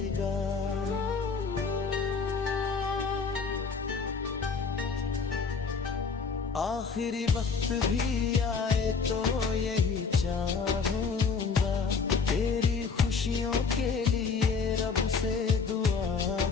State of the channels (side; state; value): right; quieter; 5.2 dB